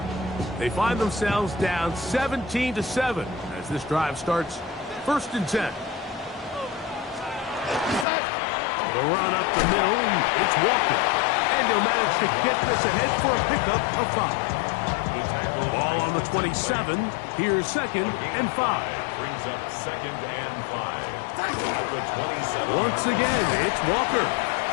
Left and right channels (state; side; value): drops out; right; at 8.1 s